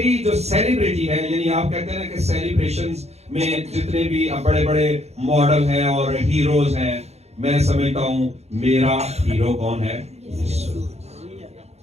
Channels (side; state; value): left; late; 0.31 ms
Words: جو سیلیبریٹی ہے، یعنی آپ کہتے ہیں نا کہ سیلیبریشنز میں جتنے بھی بڑے بڑے ماڈل ہیں اور ہیروز ہیں، میں سمجھتا ہوں میرا ہیرو کون ہے؟ یسوع۔